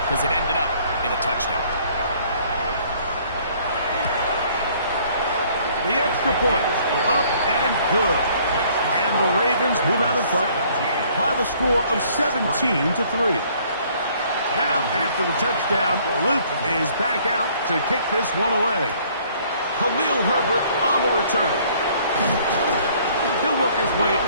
because it ended up in a touchdown. The extra point, up and good. And the Ravens move out in front by the score of 17-3. Now, after the touchdown, Luke is back out to kick this one away. Khalil Herbert on the return. He'll work his way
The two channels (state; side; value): inverted; both; correlation -0.60